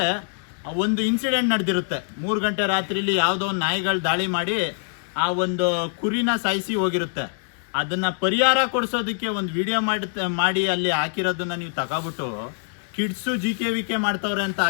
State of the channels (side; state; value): right; silent; digital silence